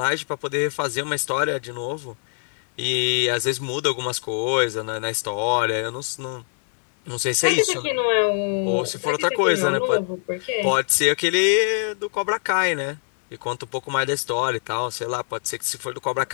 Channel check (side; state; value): right; silent; digital silence